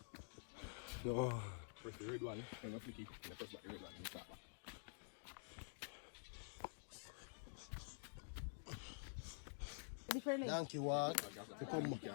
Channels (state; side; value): silent; right; digital silence